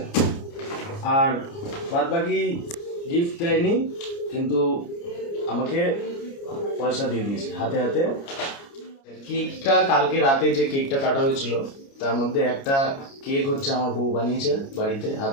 আর বাদ বাকি গিফট দেয়নি, কিন্তু আমাকে পয়সা দিয়ে দিয়েছে হাতে হাতে। কেকটা কালকে রাতে যে কেকটা কাটা হয়েছিল তার মধ্যে একটা কেক হচ্ছে আমার বউ বানিয়েছে বাড়িতে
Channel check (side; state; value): right; late; 29 ms